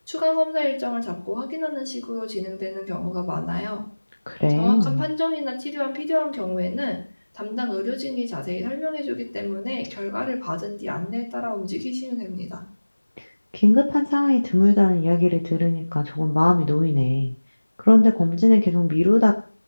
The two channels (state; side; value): inverted; both; correlation -1.00